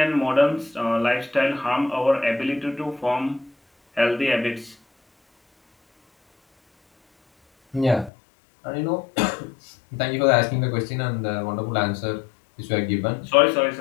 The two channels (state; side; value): drops out; right; at 8.1 s